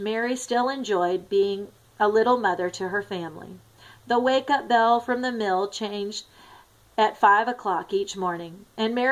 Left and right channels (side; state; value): both; identical; correlation 1.00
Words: still enjoyed being a little mother to her family. The wake-up bell from the mill changed at 5 o'clock each morning, and